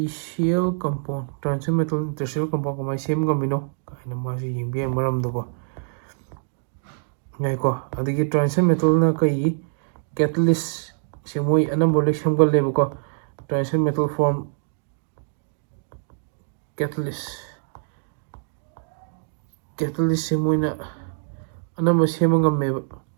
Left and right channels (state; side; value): silent; left; digital silence